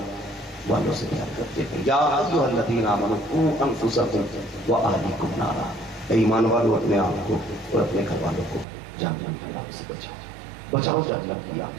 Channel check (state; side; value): drops out; left; at 8.7 s